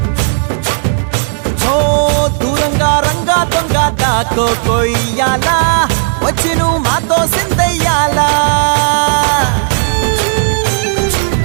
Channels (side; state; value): left; silent; digital silence